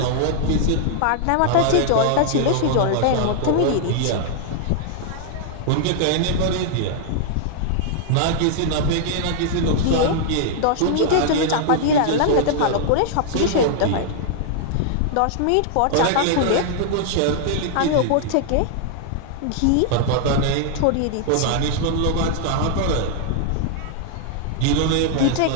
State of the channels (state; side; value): different; both; correlation -0.01